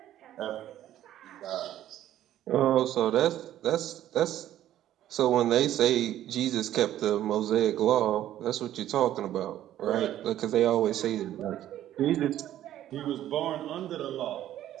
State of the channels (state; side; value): quieter; left; 12.4 dB